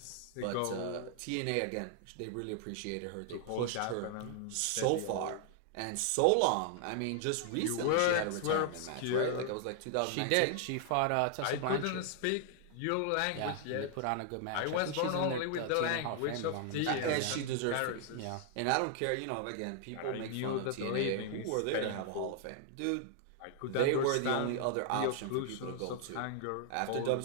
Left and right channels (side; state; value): both; different; correlation 0.00